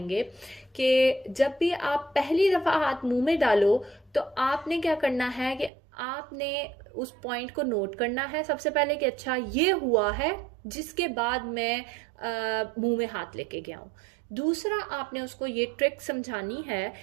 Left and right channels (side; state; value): left; drops out; at 5.7 s